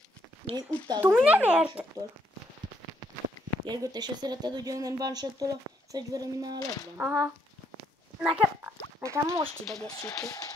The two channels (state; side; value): normal; both; correlation 0.73